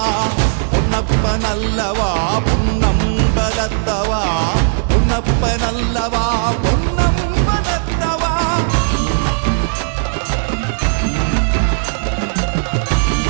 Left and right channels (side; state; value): left; silent; digital silence